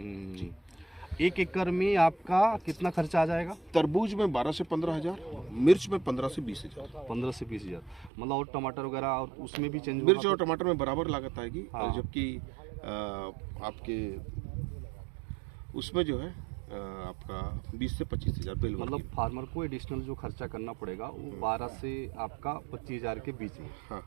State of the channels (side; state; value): left; drops out; at 8.1 s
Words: जी। 1 एकड़ में आपका कितना खर्चा आ जाएगा? तरबूज में 12 से 15,000, मिर्च में 15 से 20,000। 15 से 20,000। मतलब और टमाटर वगैरह और उसमें भी चेंज मिर्च और टमाटर में बराबर लागत आएगी। हाँ। जबकि आपके उसमें जो है आपका 20 से 25,000 बेल वर्गी। मतलब फार्मर को एडिशनल जो खर्चा करना पड़ेगा वो 12 से आपका 25,000 के बीच में हाँ।